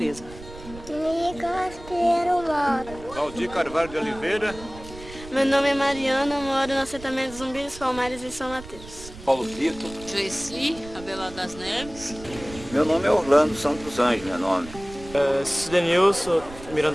Nicolas Pinheiro mora. Valdir Carvalho de Oliveira. Meu nome é Mariana, moro no assentamento Zumbi dos Palmares em São Mateus. Paulo Tito. Joeci, Abelardo das Neves. Meu nome é Orlando Santos Anjos, meu nome. Cidenilson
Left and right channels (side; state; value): right; noise; rumble, 16 dB below the sound